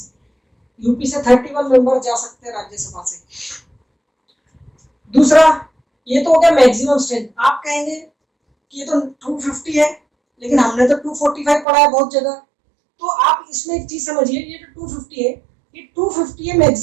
यूपी से 31 मेंबर जा सकते हैं राज्यसभा से। दूसरा ये तो हो गया मैक्सिमम स्ट्रेंथ। आप कहेंगे कि ये तो 250 है लेकिन हमने तो 245 पढ़ा है बहुत जगह। तो आप इसमें एक चीज समझिए, ये जो 250 है ये 250 है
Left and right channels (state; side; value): drops out; left; at 11.7 s